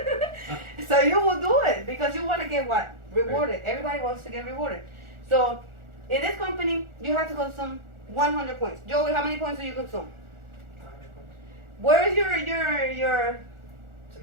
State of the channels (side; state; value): left; late; 1.4 ms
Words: So you will do it because you want to get what? Rewarded. Everybody wants to get rewarded. So in this company, you have to consume 100 points. Joey, how many points do you consume? 100 points. Where is your It's